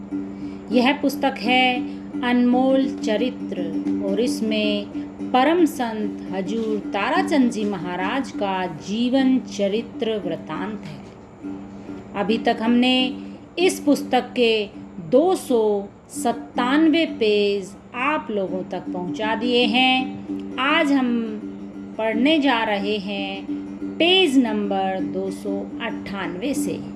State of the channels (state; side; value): identical; both; correlation 1.00